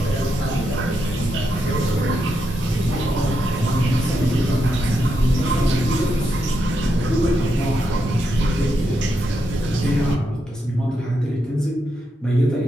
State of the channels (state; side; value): normal; both; correlation 0.83